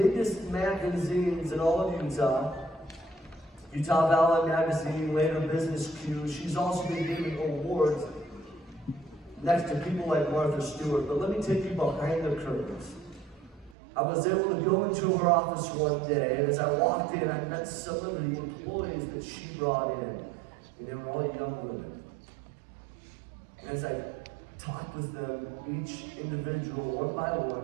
magazines in all of Utah Valley Magazine, later Business Q. She's also been giving awards next to people like Martha Stewart. But let me take you behind the curtains. I was able to go into her office one day, and as I walked in, I met some of the employees that she brought in, and they were all young women. And as I talked with them, each individual, one by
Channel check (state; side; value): drops out; left; at 13.8 s